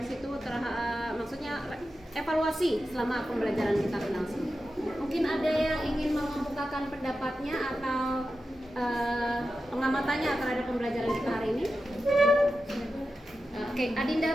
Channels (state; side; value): normal; both; correlation 0.91